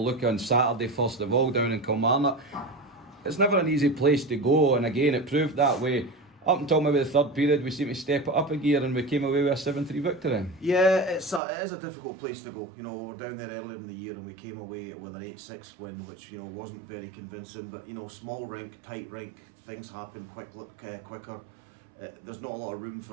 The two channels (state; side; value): drops out; left; at 11.4 s